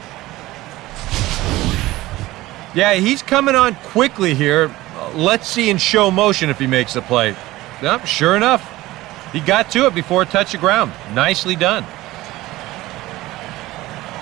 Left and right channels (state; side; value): quieter; left; 17.8 dB